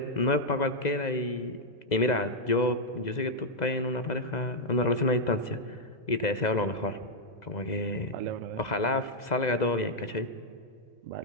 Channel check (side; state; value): right; late; 2.0 ms